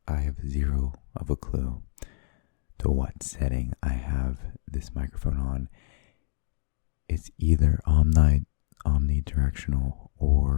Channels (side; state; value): right; silent; digital silence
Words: have zero of a clue to what setting I have this microphone on. It's either omnidirectional